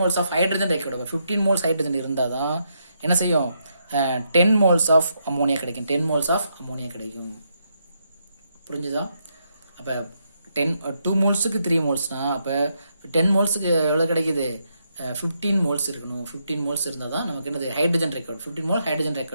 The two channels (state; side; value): inverted; both; correlation -0.79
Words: of hydrogen required. 15 moles hydrogen இருந்தால் தான் என்ன செய்யும் 10 moles of ammonia கிடைக்கும். 10 moles of ammonia கிடைக்கும். புரிஞ்சுதா? அப்போ 2 molesக்கு 3 molesனா அப்போ 10 molesக்கு எவ்வளோ கிடைக்குது? 15 moles இருக்கணும். 15 moles இருந்தால் தான் நமக்கு என்னது hydrogen record. 15 mole hydrogen